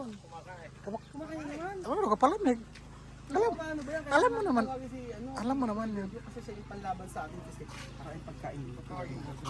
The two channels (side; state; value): both; identical; correlation 1.00